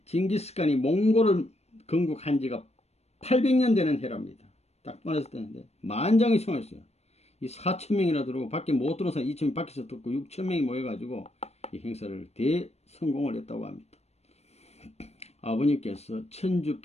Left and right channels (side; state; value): right; late; 0.31 ms